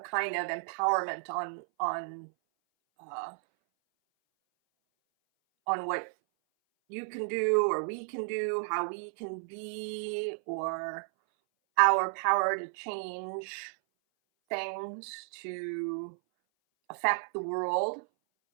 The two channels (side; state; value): left; silent; 56 dB below the other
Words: of empowerment on what you can do or we can do, how we can be, or our power to change things, to affect the world.